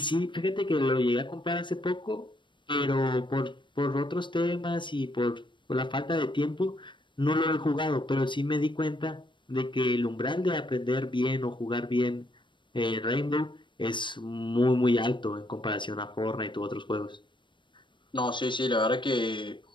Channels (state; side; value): late; right; 0.23 ms